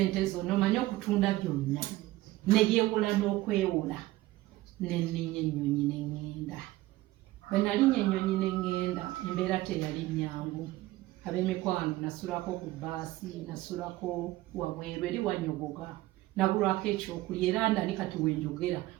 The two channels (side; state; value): left; quieter; 17.5 dB